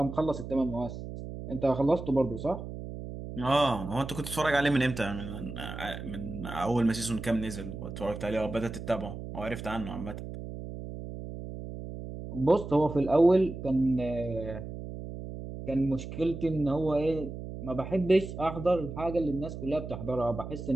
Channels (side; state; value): right; noise; hum, 9 dB below the sound